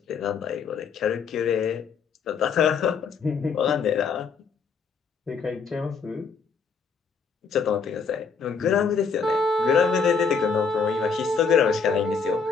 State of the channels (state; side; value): quieter; right; 5.5 dB